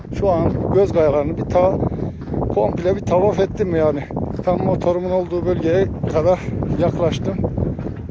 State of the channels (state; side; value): identical; both; correlation 1.00